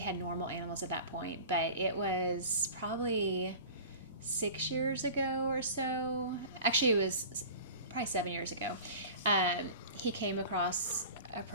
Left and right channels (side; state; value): both; inverted; correlation -0.38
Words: normal animals at that point, but it was probably 6 years ago or so. Actually, it was probably 7 years ago. He came across a